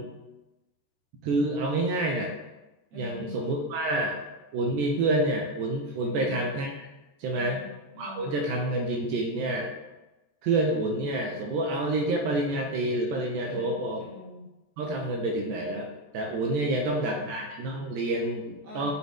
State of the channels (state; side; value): late; left; 14 ms